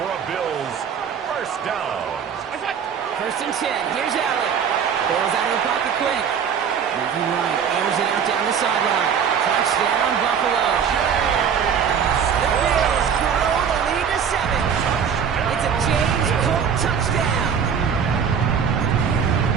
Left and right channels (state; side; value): quieter; left; 7.3 dB